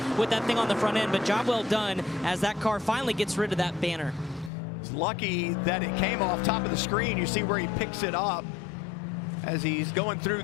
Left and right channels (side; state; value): right; drops out; at 4.5 s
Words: with that thing on the front end. But job well done as that car finally gets rid of that banner. It's lucky that it came off top of the screen. You see where he picks it up as he's going through